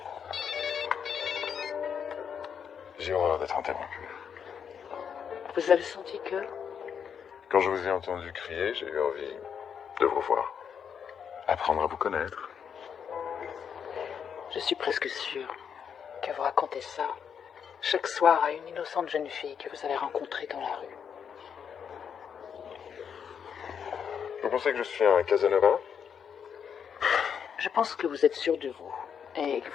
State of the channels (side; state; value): right; quieter; 7.4 dB